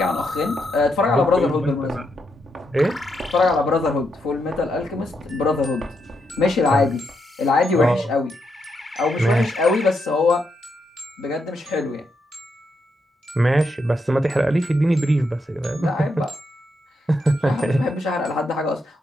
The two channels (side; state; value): both; normal; correlation 0.81